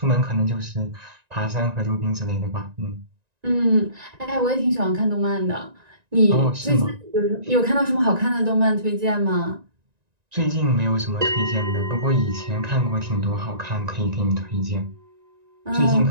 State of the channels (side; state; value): left; late; 1.9 ms